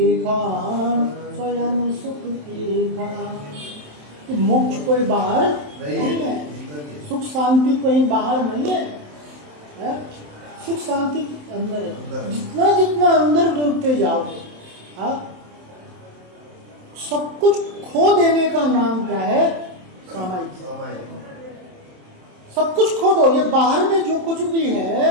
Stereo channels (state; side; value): late; left; 27 ms